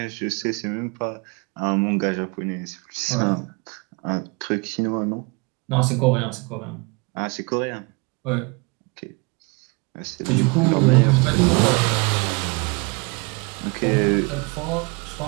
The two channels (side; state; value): left; quieter; 29.7 dB